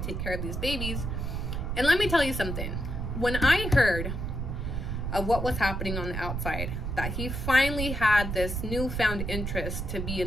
care of these babies. And let me tell you something. When I heard of what was happening on the outside, that he finally had this newfound interest to be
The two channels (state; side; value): noise; right; rumble, 3 dB below the sound